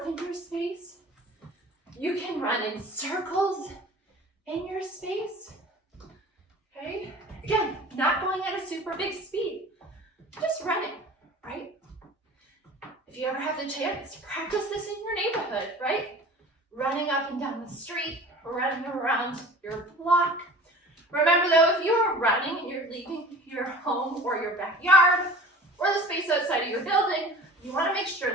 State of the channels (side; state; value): both; normal; correlation 0.42